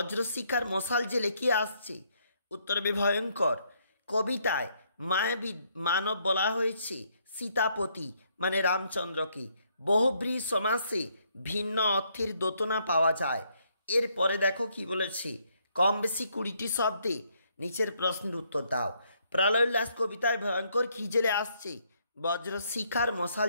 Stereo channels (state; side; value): inverted; both; correlation -0.72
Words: মশাল জেলে কি আসছে? উত্তর হবে ভয়ঙ্কর। কবিতায় মায়াবী মানব বলা হয়েছে সীতাপতি মানে রামচন্দ্রকে। বহুব্রী সমাসে ভিন্ন অর্থের দোতনা পাওয়া যায়। এরপরে দেখো কি বলেছে, কম বেশি 20টি শব্দে নিচের প্রশ্নের উত্তর দাও। প্রলয়োল্লাস কবিতায় ভয়ঙ্কর কি জেলে আসছে? বজ্রশিখার মশাল